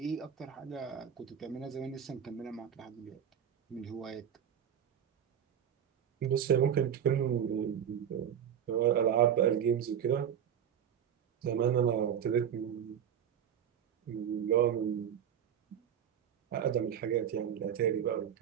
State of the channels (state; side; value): quieter; left; 8.9 dB